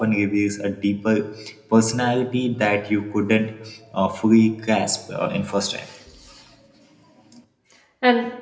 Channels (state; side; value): identical; both; correlation 1.00